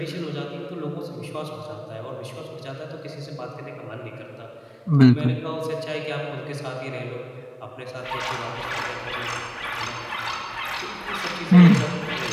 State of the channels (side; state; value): both; identical; correlation 1.00